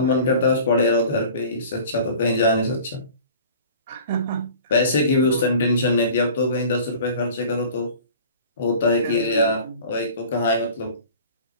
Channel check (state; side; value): inverted; both; correlation -0.45